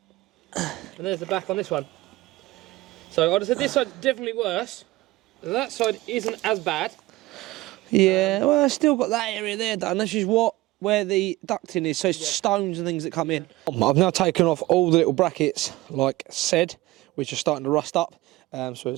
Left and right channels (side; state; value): left; quieter; 18.8 dB